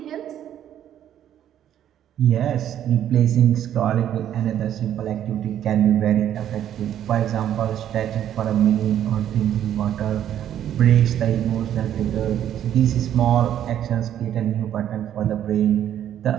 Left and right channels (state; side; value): quieter; left; 10.7 dB